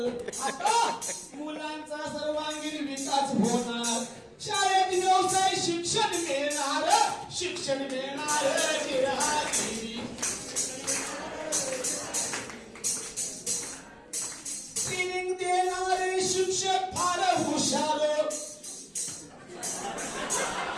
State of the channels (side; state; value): both; identical; correlation 1.00